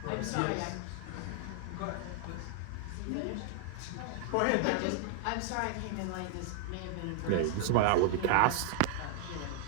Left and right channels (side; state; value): both; different; correlation 0.00